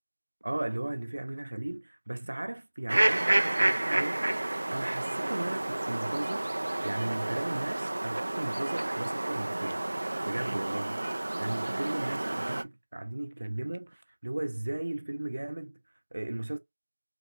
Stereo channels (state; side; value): inverted; both; correlation -1.00